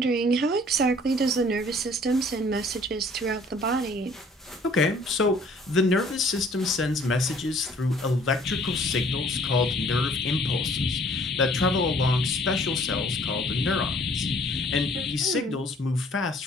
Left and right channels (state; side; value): normal; both; correlation 0.56